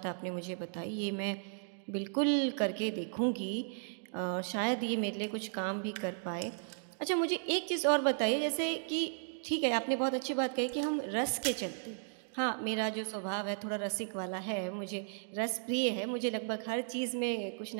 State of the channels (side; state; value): left; silent; digital silence